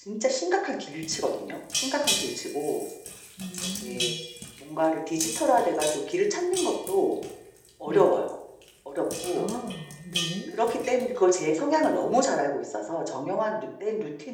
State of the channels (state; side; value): identical; both; correlation 1.00